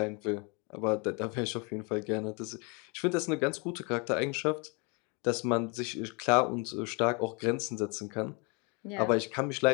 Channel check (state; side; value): quieter; right; 30.7 dB